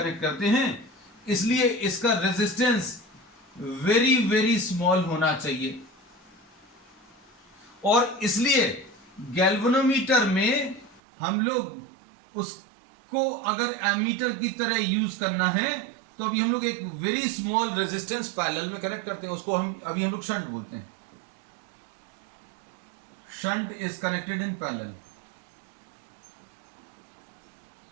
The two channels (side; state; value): left; drops out; at 11.0 s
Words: करते हैं, इसलिए इसका रेजिस्टेंस वेरी वेरी स्मॉल होना चाहिए. और इसलिए गैल्वेनोमीटर में हम लोग उसको अगर एमीटर की तरह यूज करना है तो अभी हम लोग एक वेरी स्मॉल रेजिस्टेंस पैरेलल में कनेक्ट करते हैं, उसको हम अभी हम लोग शंट बोलते हैं. Shunt is connected in parallel.